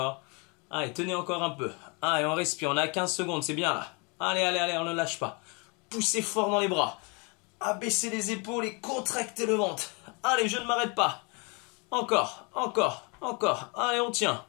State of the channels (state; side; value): quieter; right; 31.4 dB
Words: Allez, tenez encore un peu. Allez, on respire, on a 15 secondes, c'est bien là. Allez, allez, allez, on ne lâche pas. Poussez fort dans les bras. Abaissez les épaules et contractez le ventre. Allez, je ne m'arrête pas. Encore, encore, encore. Allez, on tient.